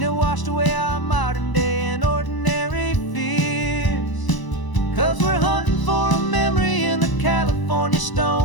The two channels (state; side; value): late; right; 1.0 ms